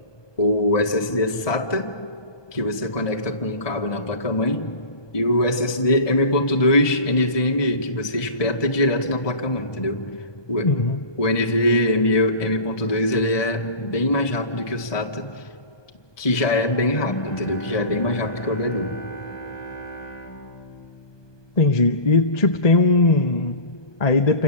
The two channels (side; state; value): right; late; 1.2 ms